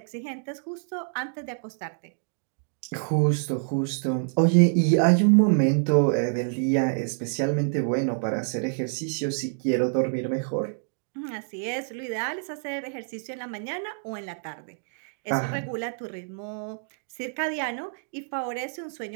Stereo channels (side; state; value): left; silent; digital silence